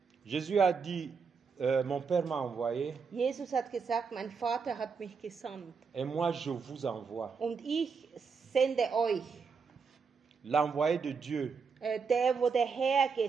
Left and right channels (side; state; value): left; quieter; 5.5 dB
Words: Jésus a dit, mon Père m'a envoyé Jesus hat gesagt, mein Vater hat mich gesandt et moi je vous envoie. und ich sende euch. L'envoyé de Dieu, Der, wo der Herr